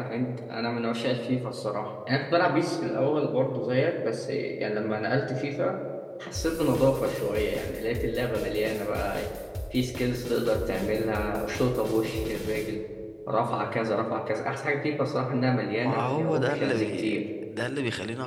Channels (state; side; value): identical; both; correlation 1.00